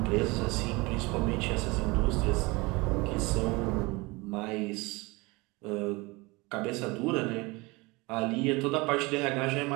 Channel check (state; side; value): quieter; left; 24.5 dB